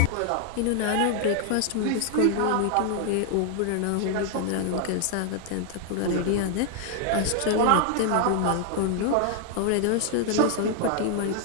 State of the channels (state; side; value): different; both; correlation 0.00